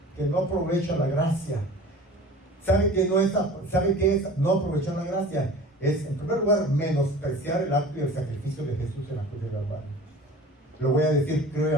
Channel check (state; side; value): normal; both; correlation 0.41